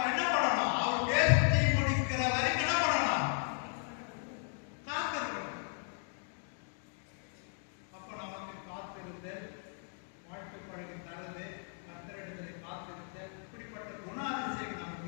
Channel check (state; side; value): silent; right; 54 dB below the other